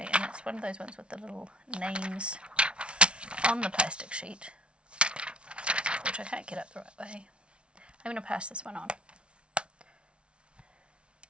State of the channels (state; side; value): late; left; 0.059 ms